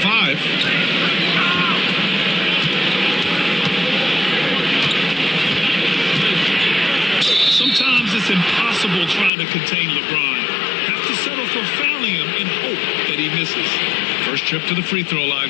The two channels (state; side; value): drops out; right; at 9.3 s